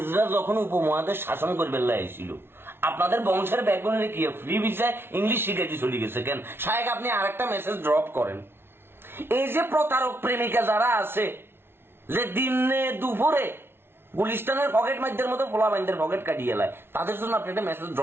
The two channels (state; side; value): late; left; 0.11 ms